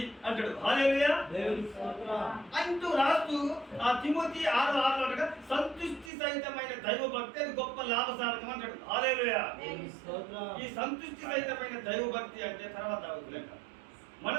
అంటాడు. హల్లెలూయా అంటూ రాస్తూ ఆ తిమోతి 6:6 సంతుష్టి సహితమైన దైవ భక్తి అది గొప్ప లాభసాధకం అంటాడు. హల్లెలూయా. ఈ సంతుష్టి సహితమైన దైవ భక్తి అంటే తర్వాత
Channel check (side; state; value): left; drops out; at 6.1 s